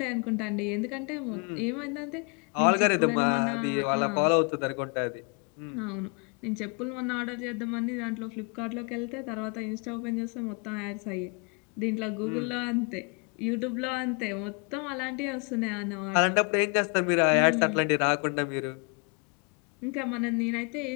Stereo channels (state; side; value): quieter; right; 34.3 dB